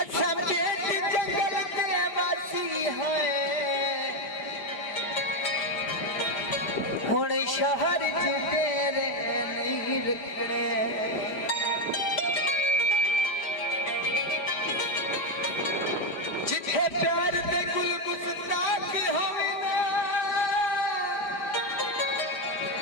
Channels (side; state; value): right; late; 5.1 ms